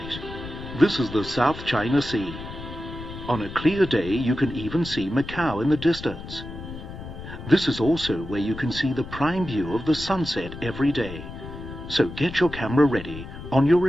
This is the South China Sea. On a clear day, you can even see Macau in the distance. This is also where you can see the prime view of the sunset every day. So get your camera ready on your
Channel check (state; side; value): noise; left; rumble, 11 dB below the sound